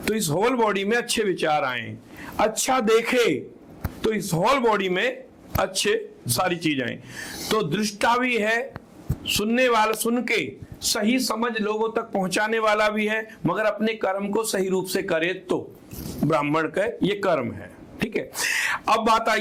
तो इस होल बॉडी में अच्छे विचार आए, अच्छा देखे तो इस होल बॉडी में अच्छे सारी चीज आए। तो दृष्टा भी है, सुनने वाला, सुन के सही समझ लोगों तक पहुंचाने वाला भी है, मगर अपने कर्म को सही रूप से करे तो ब्राह्मण का ये कर्म है। ठीक है। अब बात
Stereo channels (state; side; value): identical; both; correlation 1.00